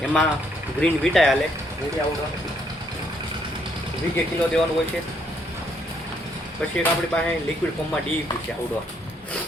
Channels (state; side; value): normal; both; correlation 0.70